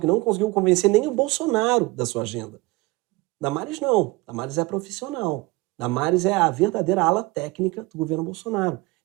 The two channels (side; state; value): left; quieter; 22.1 dB